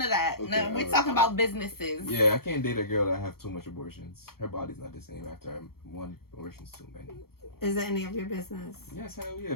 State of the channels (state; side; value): late; right; 0.94 ms